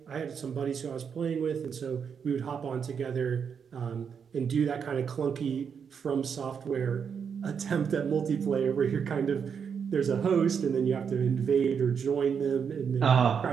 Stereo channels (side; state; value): left; quieter; 6.9 dB